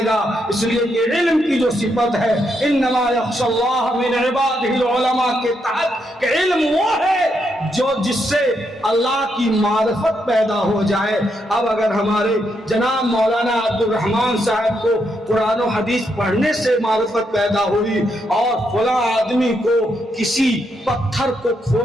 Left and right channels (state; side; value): normal; both; correlation 0.79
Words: گا۔ اس لیے کہ علم کی جو صفت ہے انما یخشی اللہ من عبادہ العلماء کے تحت، کہ علم وہ ہے جو جس سے اللہ کی معرفت پیدا ہو جائے۔ اب اگر ہمارے جناب مولانا عبد الرحمن صاحب کو قرآن و حدیث پڑھنے سے معرفت پیدا ہوئی اور فلاں آدمی کو کسی پتھر کو